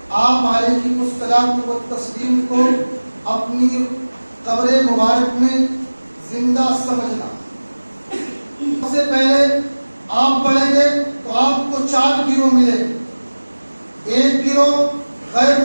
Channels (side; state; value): both; inverted; correlation -1.00